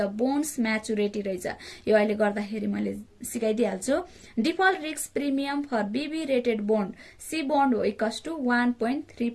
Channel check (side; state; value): both; identical; correlation 1.00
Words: बोन्ड्स म्याचुरिटी रहेछ। यो अहिले गर्दाखेरि मैले सिकाइदिइहाल्छु। Default risk premium for BB rated bond C bond हो इक्वल्स टु